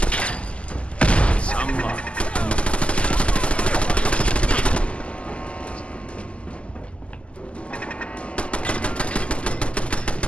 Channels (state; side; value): late; right; 0.056 ms